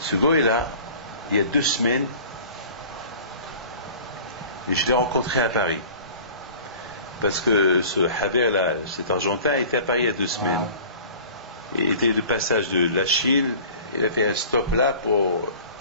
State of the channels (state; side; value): inverted; both; correlation -0.44